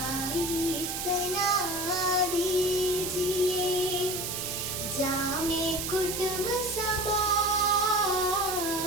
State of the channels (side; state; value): right; noise; hiss, 3 dB below the sound